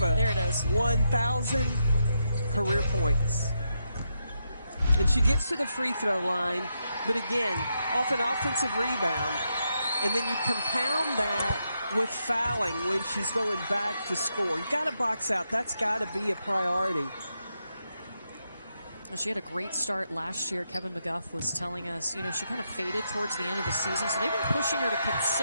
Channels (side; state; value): both; inverted; correlation -0.82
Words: There it is. 1,000 career points. And she gets to the free throw line, but again, off an offensive rebound. And then you compound that with fouling when she's going back to score. You got to box out. That's got to be a priority. She had a great start last year. Kevin McGuff was telling us, you know, she kind of faded towards the end of the season. So they've been pushing her to